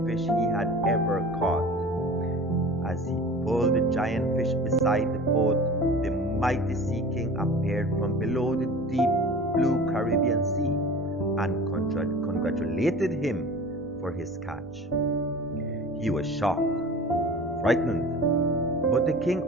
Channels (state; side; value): normal; both; correlation 0.39